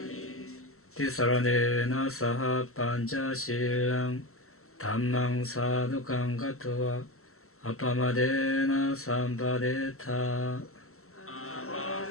티사라네나 사하 판차실랑 담망 사두강 가토와 아빠마데나 삼바데타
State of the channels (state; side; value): late; right; 0.63 ms